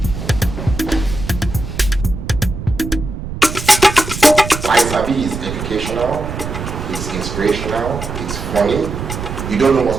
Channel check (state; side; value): noise; right; rumble, 7 dB below the sound